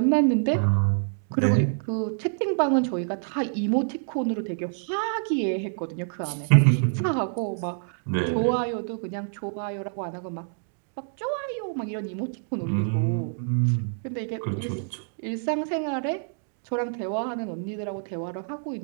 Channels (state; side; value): silent; left; digital silence